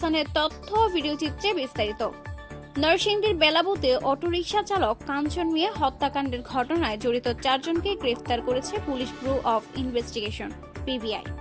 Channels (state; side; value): identical; both; correlation 1.00